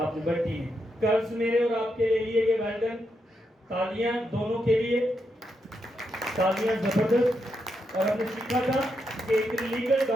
نے بڑی ہے۔ قرض میرے اور آپ کے لے لیے گئے، ویلڈن، تالیاں دونوں کے لیے، تالیاں زبردست۔ اور ہم نے سیکھا تھا کہ ایک لیگل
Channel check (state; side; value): normal; both; correlation 0.82